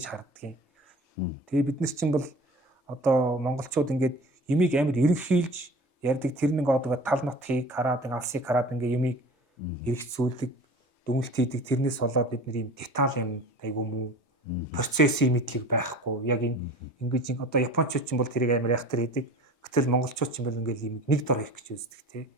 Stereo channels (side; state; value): both; normal; correlation 0.41